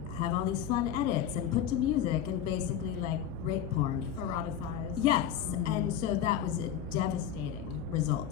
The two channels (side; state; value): right; quieter; 9.4 dB